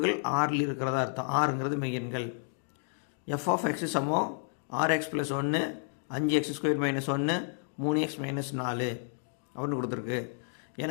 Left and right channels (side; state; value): right; silent; digital silence